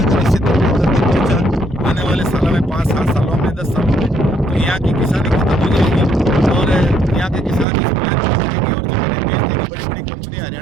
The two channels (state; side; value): drops out; left; at 7.7 s